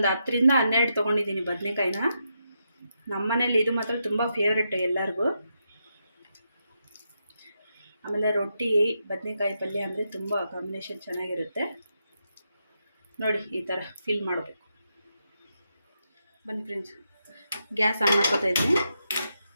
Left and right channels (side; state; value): both; inverted; correlation -0.83